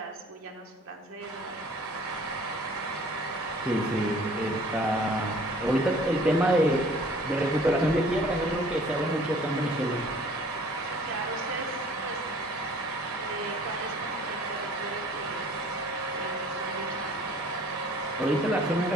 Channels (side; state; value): both; normal; correlation 0.52